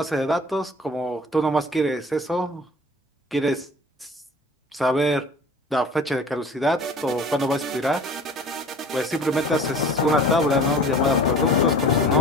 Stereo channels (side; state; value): both; normal; correlation 0.44